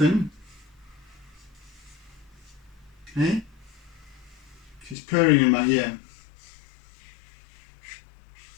Hey? She's purring in my ear.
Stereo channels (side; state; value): right; drops out; at 5.0 s